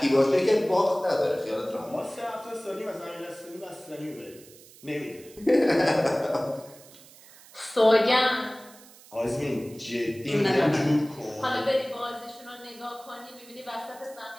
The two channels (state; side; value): noise; right; hiss, 22 dB below the sound